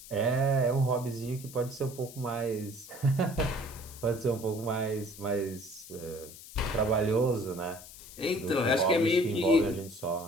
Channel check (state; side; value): noise; left; hiss, 16 dB below the sound